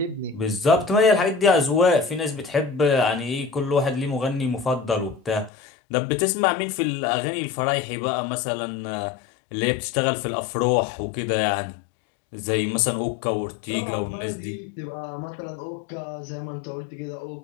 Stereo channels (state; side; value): drops out; right; at 5.5 s